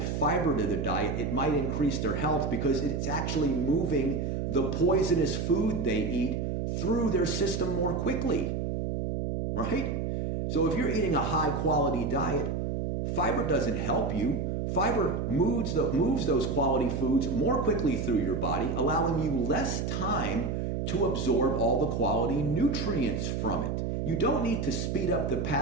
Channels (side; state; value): right; noise; hum, 1 dB below the sound